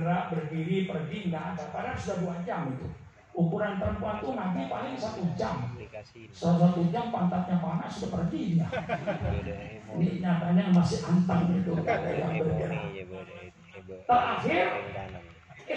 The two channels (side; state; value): both; identical; correlation 1.00